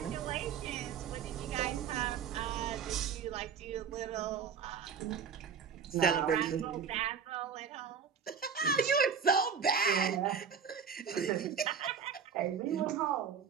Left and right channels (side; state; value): left; quieter; 6.8 dB